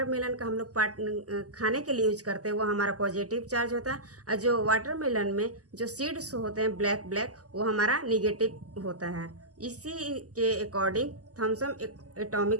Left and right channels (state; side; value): late; left; 0.67 ms